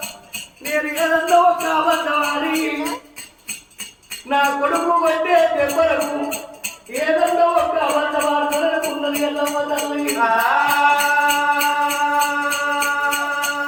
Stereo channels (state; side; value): identical; both; correlation 1.00